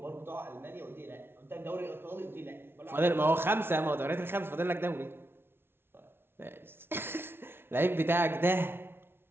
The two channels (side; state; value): left; late; 0.11 ms